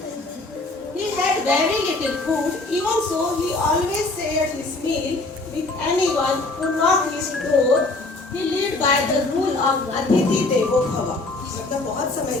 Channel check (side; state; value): right; quieter; 3.1 dB